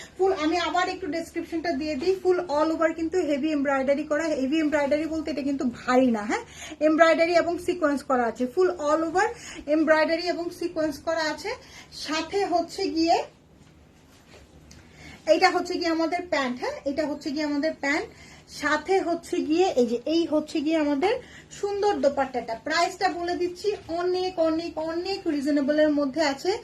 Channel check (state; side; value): identical; both; correlation 1.00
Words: ফুল, আমি আবার একটু ডেসক্রিপশনটা দিয়ে দিই, ফুল অল ওভার কিন্তু হেভি এমব্রয়ডারি করা। হেভি এমব্রয়ডারি বলতে এটা কিন্তু ভারী না। হ্যাঁ, এমব্রয়ডারি এবং সিকোয়েন্স করা আছে, ফুল অল ওভার এমব্রয়ডারি এবং সিকোয়েন্স করা আছে। সাথে হচ্ছে গিয়ে এইটা হচ্ছে গিয়ে আমাদের প্যান্ট। হ্যাঁ, এটা হচ্ছে গিয়ে আমাদের প্যান্ট, সাথে হচ্ছে গিয়ে এই যে এই হচ্ছে গিয়ে আমাদের সুন্দর দোপাট্টাটা। প্রাইসটা বলে দিচ্ছি, অনেক অনেক অনেক রিজনেবলের মধ্যে আছে।